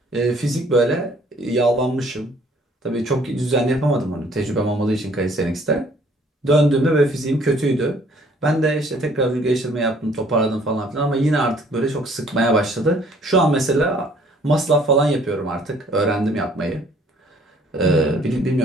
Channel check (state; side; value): normal; both; correlation 0.59